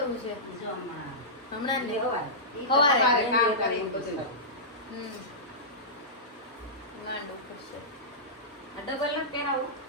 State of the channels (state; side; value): normal; both; correlation -0.16